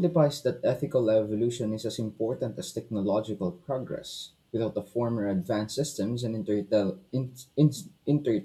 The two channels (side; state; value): both; identical; correlation 1.00